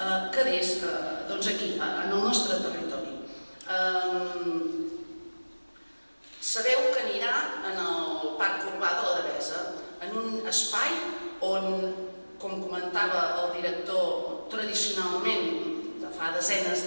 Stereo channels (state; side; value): inverted; both; correlation -1.00